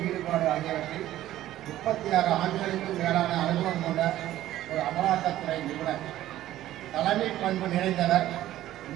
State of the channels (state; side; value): quieter; left; 13.9 dB